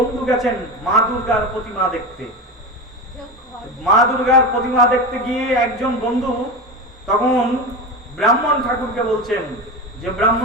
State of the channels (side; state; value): both; normal; correlation 0.22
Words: গেছেন মা দুর্গার প্রতিমা দেখতে। মা দুর্গার প্রতিমা দেখতে গিয়ে একজন বন্ধু তখন ব্রাহ্মণ ঠাকুরকে বলছেন যে